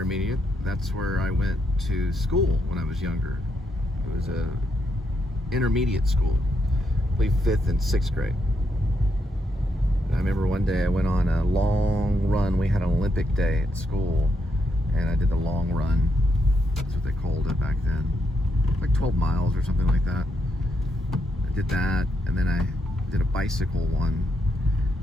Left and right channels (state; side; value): normal; both; correlation 0.80